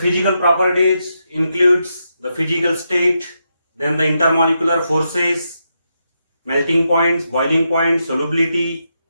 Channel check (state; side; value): inverted; both; correlation -0.83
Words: properties includes the physical state, then the intermolecular forces, melting points, boiling points, solubility,